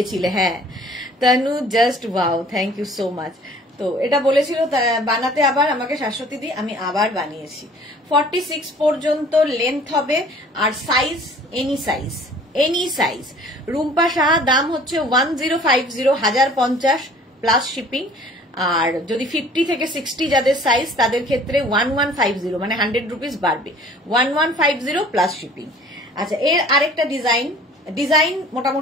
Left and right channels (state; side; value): normal; both; correlation 0.51